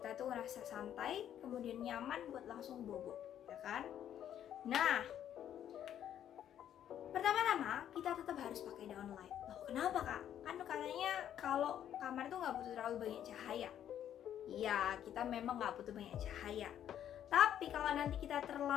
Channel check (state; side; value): quieter; right; 10.3 dB